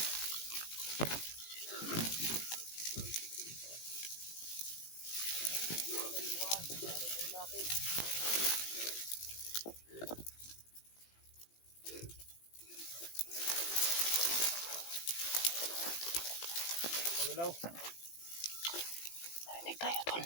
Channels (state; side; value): late; right; 18 ms